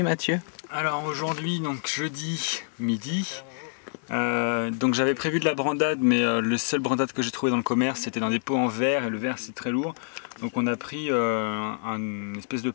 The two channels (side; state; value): right; silent; digital silence